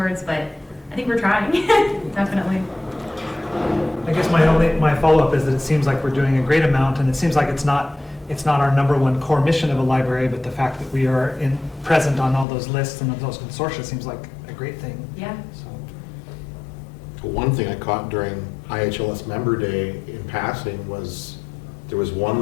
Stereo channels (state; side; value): drops out; right; at 12.5 s